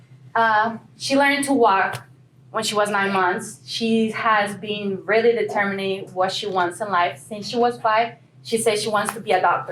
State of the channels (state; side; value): identical; both; correlation 1.00